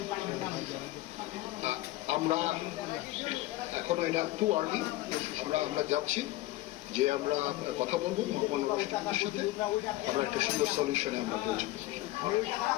আমরা এখনো এটা টু আর্লি, আমরা যাচ্ছি যে আমরা কথা বলবো ভগবান রাষ্ট্রপতির সাথে, আমরা একটা সুন্দর সলিউশনে আমরা পৌঁছাবো।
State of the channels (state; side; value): quieter; right; 17.3 dB